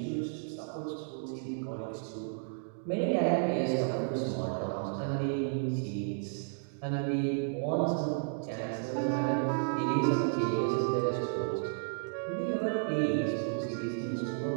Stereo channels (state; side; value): silent; left; digital silence